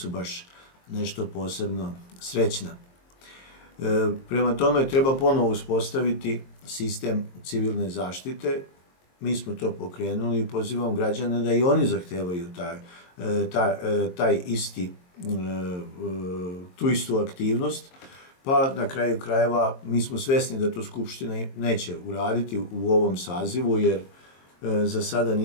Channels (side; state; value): right; late; 22 ms